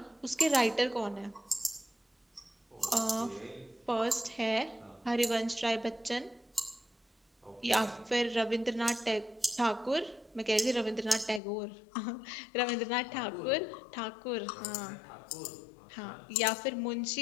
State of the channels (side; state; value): right; drops out; at 11.4 s